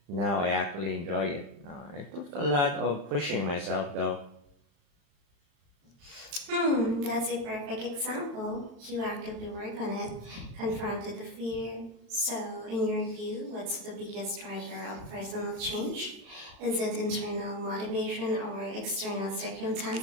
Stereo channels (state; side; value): late; left; 35 ms